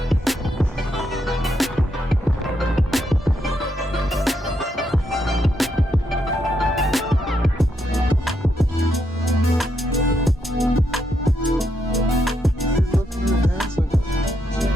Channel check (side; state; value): both; normal; correlation 0.79